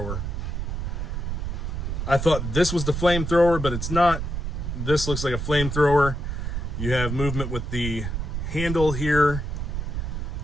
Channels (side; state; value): right; noise; rumble, 3 dB below the sound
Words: I thought this was the flamethrower, but it's not. This looks like a flamethrower. You have movement with the handle here.